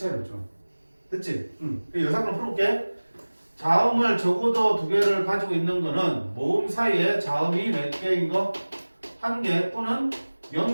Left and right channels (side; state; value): both; inverted; correlation -1.00